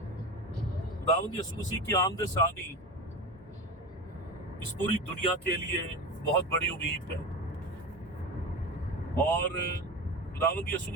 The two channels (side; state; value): both; normal; correlation 0.26